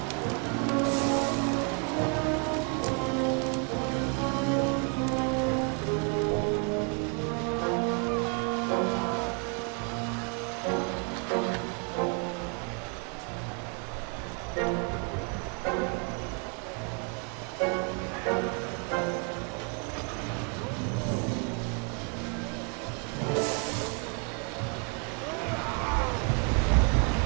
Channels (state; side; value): quieter; left; 36.8 dB